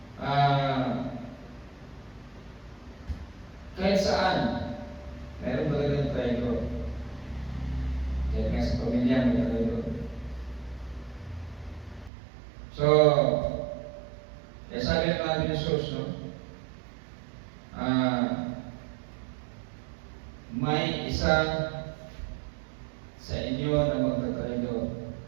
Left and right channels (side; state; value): left; drops out; at 12.1 s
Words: pamilya may traidor. So, sabi ng ating Jesus, no? May isa sa inyo na magtatraidor.